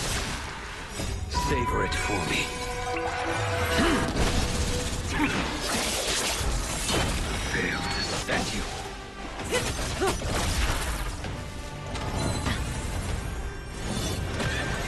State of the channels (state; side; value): identical; both; correlation 1.00